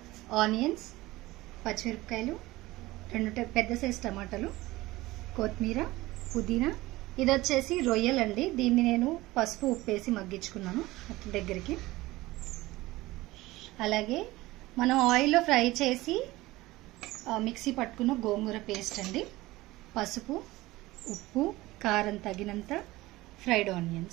ఆనియన్స్, పచ్చిమిరపకాయలు, 2 పెద్ద సైజ్ టమాటాలు, కొత్తిమీర, పుదీనా. ఇది వచ్చేసి రొయ్యలండి. దీన్ని నేను పసుపు ఉప్పేసి మగ్గించుకున్నాను దగ్గరికి. అలాగే మనం ఆయిల్లో ఫ్రై చేసి మిక్సీ పట్టుకున్న గోంగూర పేస్ట్ అండి. పసుపు, ఉప్పు, కారం తగినంత, ఫ్రైడ్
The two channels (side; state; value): left; quieter; 18.8 dB